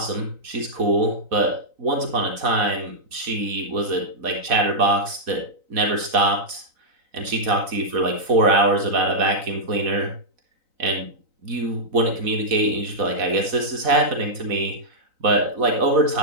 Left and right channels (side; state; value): left; late; 4.1 ms